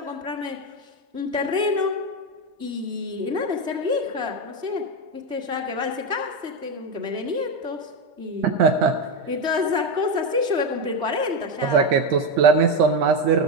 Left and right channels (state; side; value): late; left; 3.2 ms